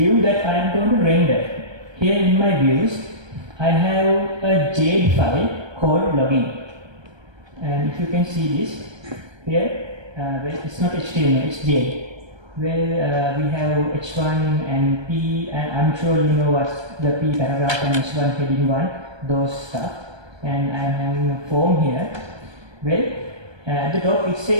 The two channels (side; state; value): left; late; 1.3 ms